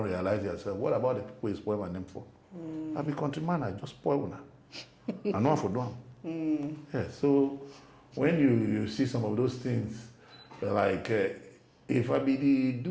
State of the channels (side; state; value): both; identical; correlation 1.00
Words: realize yourself. What about the people you spoil my name for? I be countryman, I just spoil one. I know for them. Yeah, so when you see some of those things, like if I be